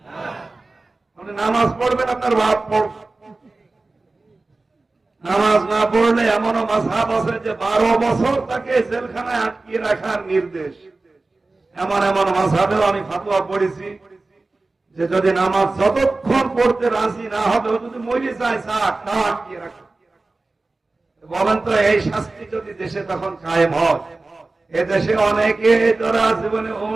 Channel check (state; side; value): quieter; left; 3.3 dB